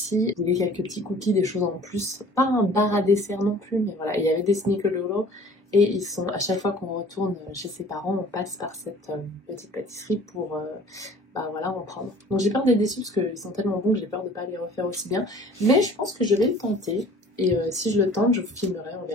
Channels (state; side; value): normal; both; correlation 0.49